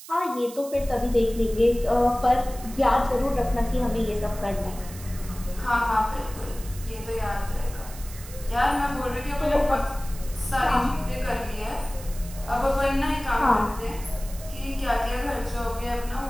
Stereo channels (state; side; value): noise; right; hiss, 16 dB below the sound